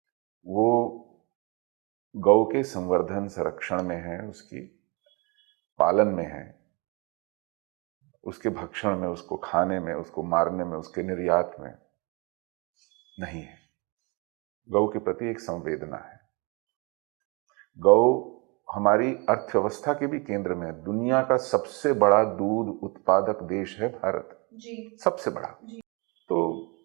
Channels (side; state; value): left; quieter; 29.8 dB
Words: वो गौ के संवर्धन संरक्षण में है, उसकी पालन में है, उसके भक्षण में, उसको खाने में, उसको मारने में, उसके निर्यात में नहीं है। गौ के प्रति एक संवेदना है। गौ हमारी अर्थव्यवस्था के भी केंद्र में है। दुनिया का सबसे बड़ा दूध उत्पादक देश है भारत जी, सबसे बड़ा जी। तो